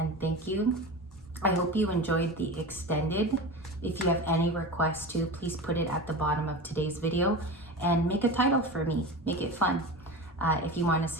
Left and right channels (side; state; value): both; normal; correlation 0.28